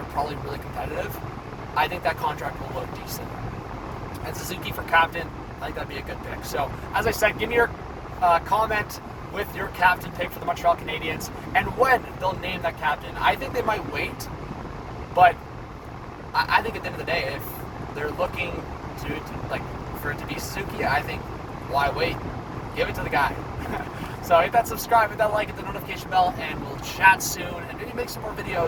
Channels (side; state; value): both; identical; correlation 1.00